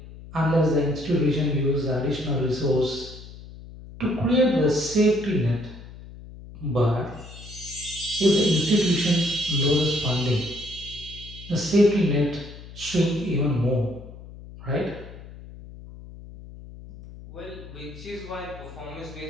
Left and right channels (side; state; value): left; noise; hum, 16 dB below the sound